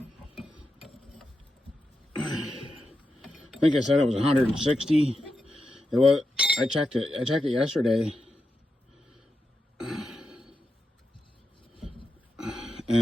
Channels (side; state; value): both; normal; correlation 0.88